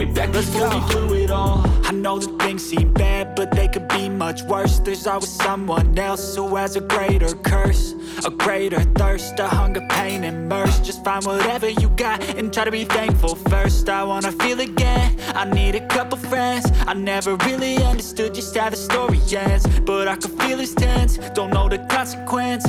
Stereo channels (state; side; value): identical; both; correlation 1.00